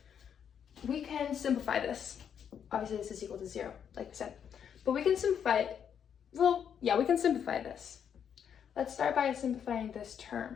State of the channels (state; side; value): quieter; right; 8.1 dB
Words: We can simplify this. Obviously, this is equal to 0, like we said. But we can simplify it. Well, yeah, we can simplify this. Let's start by simplifying this